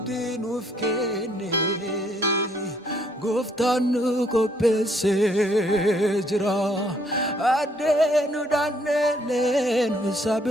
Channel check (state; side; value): normal; both; correlation 0.67